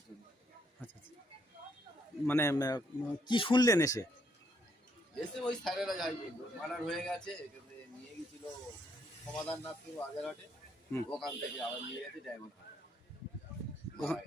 জন্য। আচ্ছা আচ্ছা, মানে কি শুনলেন এসে? এসে ওই স্যারেরা যাই বললো মার্ডার হয়ে গেছে, এখানে নিয়ে গেছিল সমাধান নাথ আগের হাটে, ওখান থেকে আবার নিয়ে গেছে ডায়মন্ড হারবার।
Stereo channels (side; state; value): both; normal; correlation 0.72